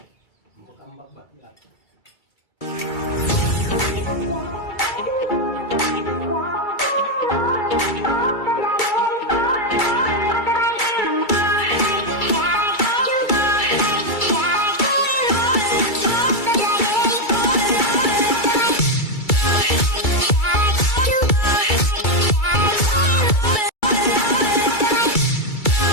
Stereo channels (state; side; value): late; right; 2.3 ms